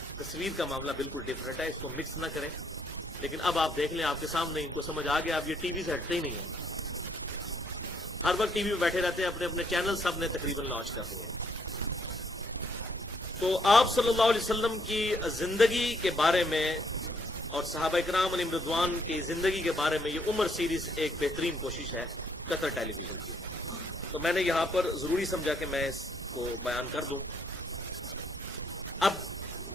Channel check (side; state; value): both; normal; correlation 0.70